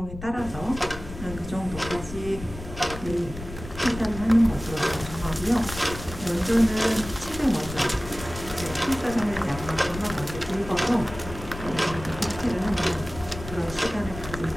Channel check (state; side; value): noise; left; rumble, 12 dB below the sound